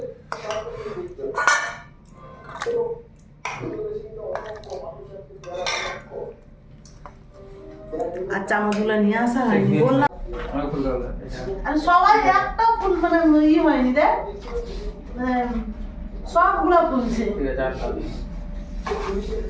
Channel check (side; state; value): both; identical; correlation 1.00